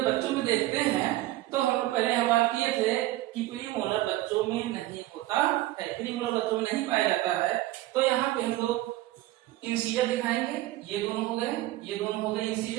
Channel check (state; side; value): quieter; left; 16.6 dB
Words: बच्चों में देखते हैं तो हम लोग पहले यह बात किए थे कि प्रीमोलर बच्चों में नहीं होता है, प्रीमोलर बच्चों में नहीं पाया जाता है। तो यहाँ पे हम लोग इंसीजर दिखाएंगे, ये दोनों हो गए, ये दोनों हो गए